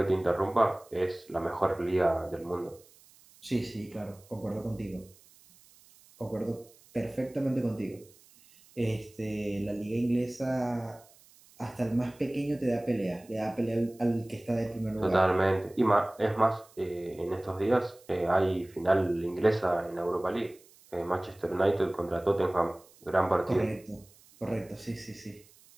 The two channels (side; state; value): right; noise; hiss, 27 dB below the sound